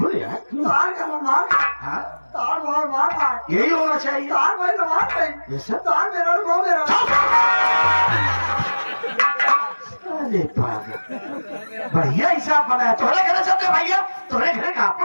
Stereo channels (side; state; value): both; inverted; correlation -1.00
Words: यार। तार का मार, हाँ तार मार यही होना चाहिए। तार भाई मार भाई, तार मेरा वो मेरा। अरे पागल, बढ़िया हिसाब बनाया। तोरे घरे चलते भैया, तोरे घरे का